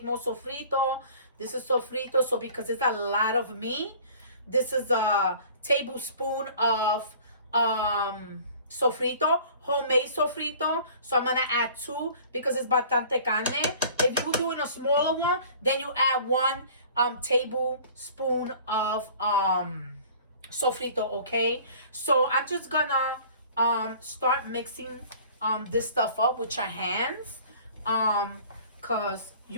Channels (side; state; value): both; inverted; correlation -0.48